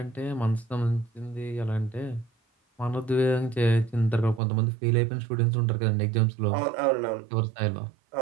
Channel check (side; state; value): left; drops out; at 4.4 s